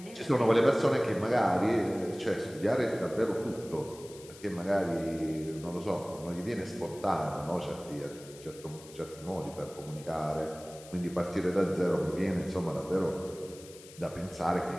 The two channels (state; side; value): noise; left; hiss, 19 dB below the sound